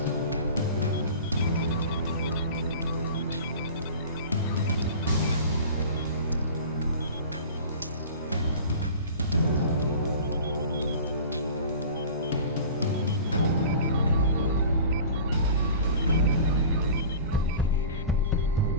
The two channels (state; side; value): inverted; both; correlation -0.39